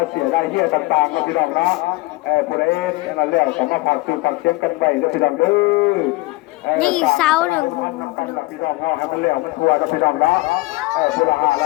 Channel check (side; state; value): right; quieter; 21.8 dB